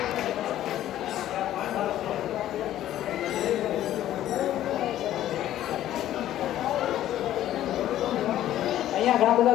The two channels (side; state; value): right; quieter; 12.7 dB